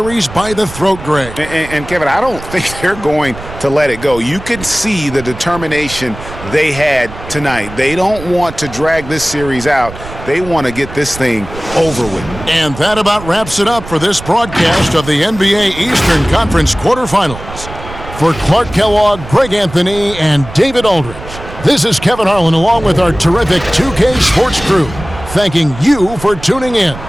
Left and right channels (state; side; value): noise; right; rumble, 13 dB below the sound